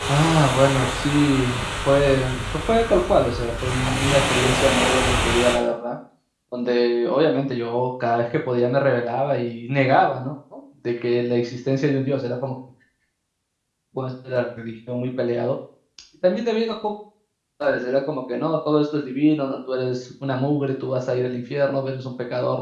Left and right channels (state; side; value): identical; both; correlation 1.00